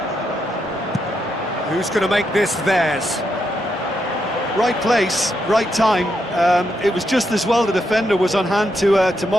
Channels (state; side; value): normal; both; correlation 0.81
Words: Who's going to make this theirs? Right place, right time. It was just as well the defender was on hand to